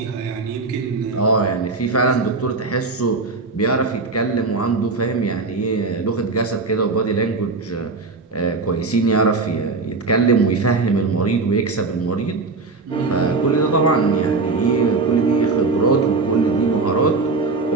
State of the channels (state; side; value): quieter; left; 3.9 dB